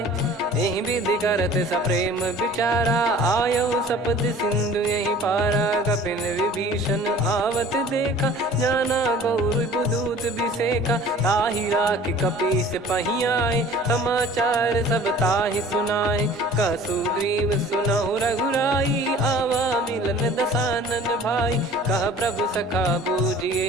यही विधि करत सप्रेम विचारा आयो सपद सिंधु यही पारा। कपिन विभीषण आवत देखा जाना गौर दूत बिसेखा। ताहि राख कपीस पही आए समाचार सब ताहि सुनाए। कह सुग्रीव सुनहु रघुराई आवा मिलन दसानन भाई। कह प्रभु सखा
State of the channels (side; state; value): both; normal; correlation 0.47